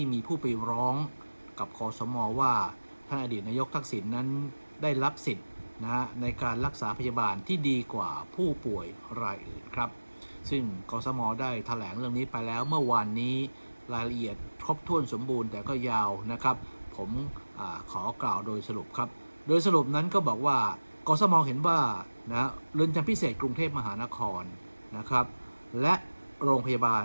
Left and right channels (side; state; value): both; inverted; correlation -1.00